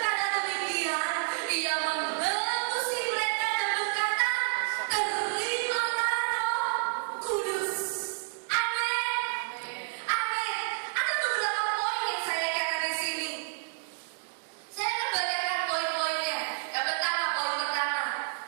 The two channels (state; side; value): silent; left; digital silence